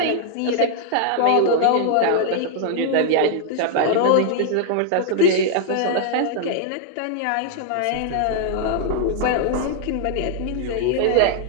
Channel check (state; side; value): different; both; correlation 0.00